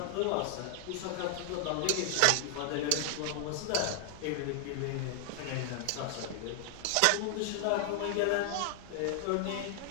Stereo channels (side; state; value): both; different; correlation 0.00